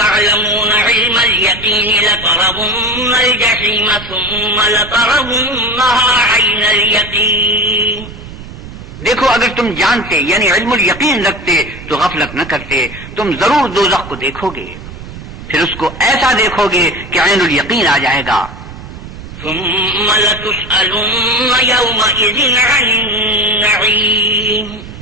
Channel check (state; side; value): noise; right; rumble, 14 dB below the sound